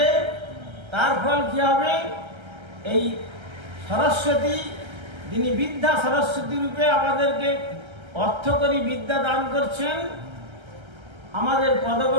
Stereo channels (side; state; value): left; late; 1.3 ms